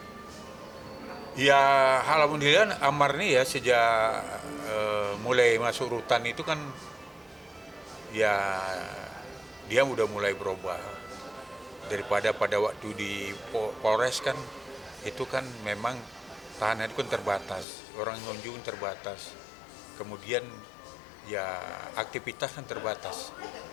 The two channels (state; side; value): drops out; right; at 17.7 s